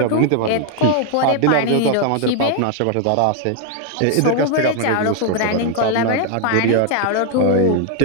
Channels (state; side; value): different; both; correlation 0.00